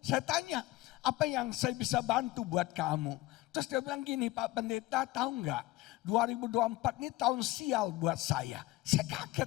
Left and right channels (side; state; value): right; quieter; 18.4 dB